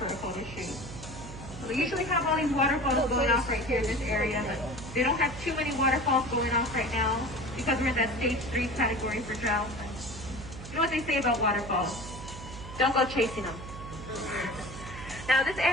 a photo shoot. We usually have all these waterfalls going off right here in this area, but they don't have too many waterfalls going off right now because we're in that stage 3 category for drought. You know what they say about waterfalls? Don't go chasing them. Now this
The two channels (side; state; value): right; noise; hum, 12 dB below the sound